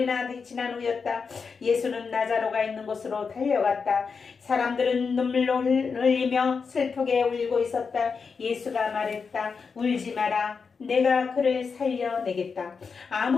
지난 후였다. 예수는 나자로가 있는 곳으로 달려갔다. 사람들은 눈물로 흘리며 슬프게 울고 있었다. 예수가 말했다. 울지 마라. 내가 그를 살려내겠다.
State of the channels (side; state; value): right; quieter; 5.4 dB